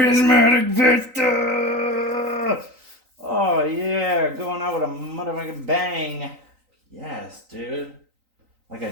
Vista! Oh yeah, going out with a motherfucking bang. Yes, dude. Like I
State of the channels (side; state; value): left; late; 3.9 ms